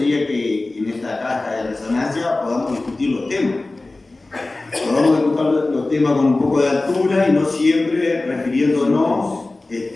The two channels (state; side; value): quieter; right; 3.1 dB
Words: que en esta caja de resonancia podamos discutir los temas. Podamos discutir los temas con un poco de altura y no siempre refiriéndonos